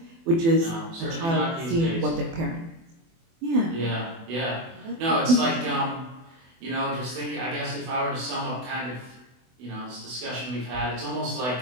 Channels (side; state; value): left; late; 24 ms